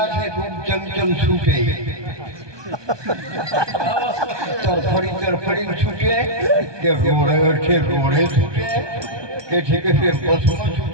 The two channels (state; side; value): late; left; 1.2 ms